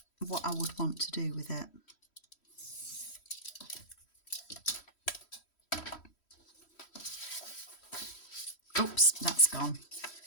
what I would want to do with it. Oops, that's gone.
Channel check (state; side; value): late; right; 3.1 ms